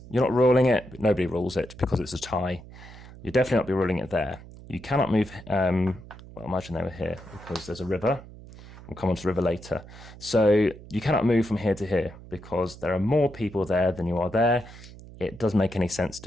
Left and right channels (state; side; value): noise; right; hum, 17 dB below the sound